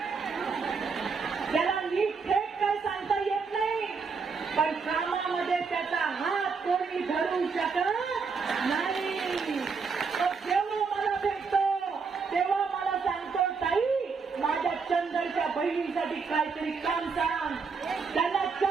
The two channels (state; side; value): quieter; left; 5.2 dB